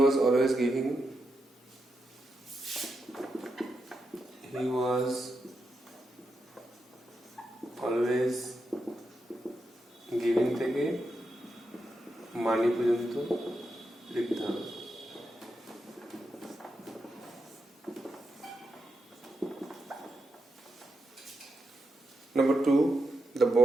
always giving. He was always giving থেকে মানি পর্যন্ত লিখতে হবে। Number 2, the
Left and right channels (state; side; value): normal; both; correlation 0.85